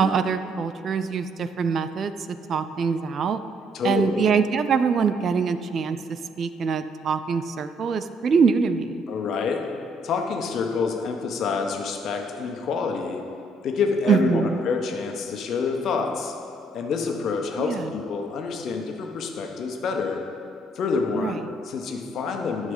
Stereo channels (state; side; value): normal; both; correlation 0.69